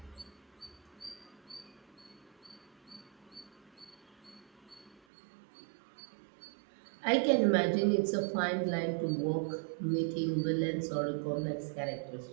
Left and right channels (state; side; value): drops out; left; at 5.0 s